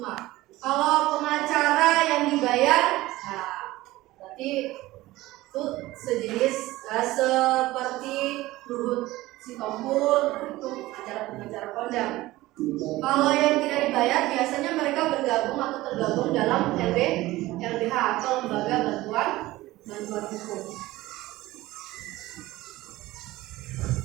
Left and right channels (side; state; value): left; quieter; 17.9 dB